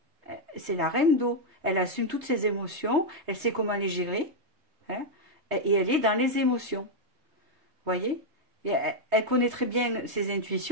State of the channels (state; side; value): late; left; 3.2 ms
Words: c'est la reine d'eau. Elle assume toutes ses émotions, elle sait comment les gérer, hein, et elle est dans les émotions. Vous voyez? Et elle connaît très bien ses